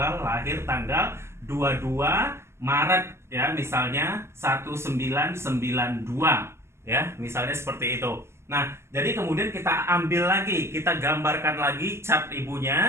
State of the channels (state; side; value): late; left; 0.13 ms